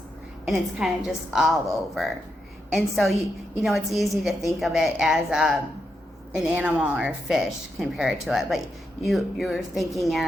And it's kind of just all over. And so, it's easy to think of it as an animal or a fish compared to it. But you're thinking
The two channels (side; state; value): both; normal; correlation 0.84